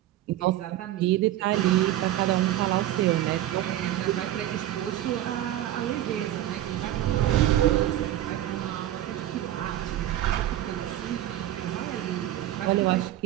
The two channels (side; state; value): left; quieter; 13.4 dB